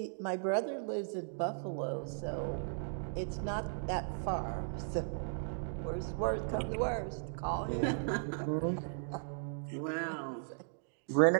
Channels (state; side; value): silent; left; digital silence